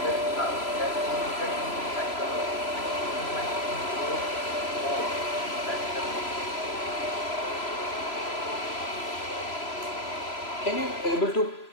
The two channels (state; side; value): late; right; 3.0 ms